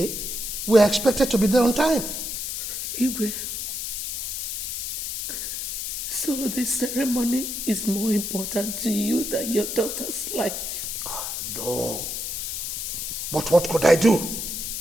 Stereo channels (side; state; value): left; noise; hiss, 4 dB below the sound